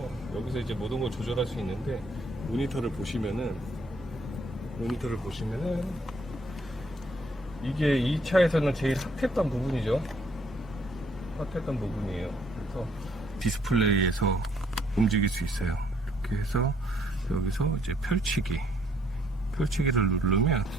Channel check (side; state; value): both; normal; correlation 0.66